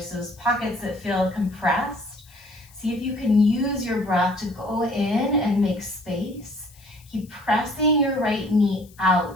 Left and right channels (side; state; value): left; noise; hiss, 26 dB below the sound